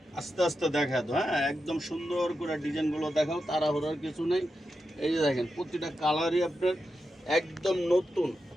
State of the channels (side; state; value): both; normal; correlation 0.88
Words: আস্তে আস্তে দেখা তো। হ্যাঁ, একদম সুন্দর করে ডিজাইনগুলো দেখাও, তাড়াহুড়ার কিছু নেই। এই যে দেখেন প্রতিটা কালারই আপনার একদম নতুন।